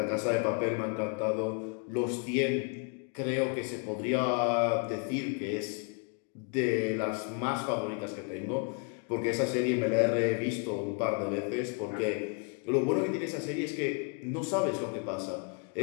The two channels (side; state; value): right; quieter; 37.0 dB